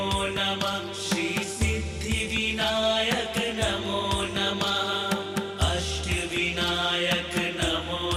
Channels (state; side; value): identical; both; correlation 1.00